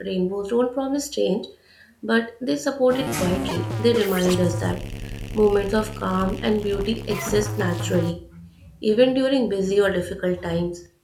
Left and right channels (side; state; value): both; identical; correlation 1.00